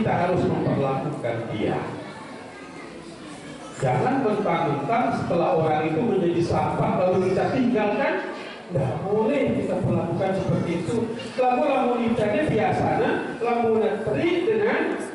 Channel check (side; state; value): both; identical; correlation 1.00